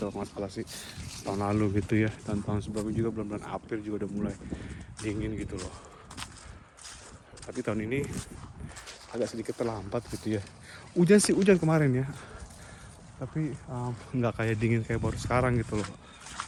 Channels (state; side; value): identical; both; correlation 1.00